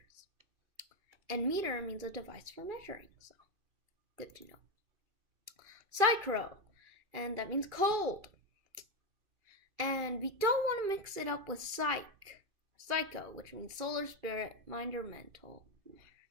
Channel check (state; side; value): late; left; 2.4 ms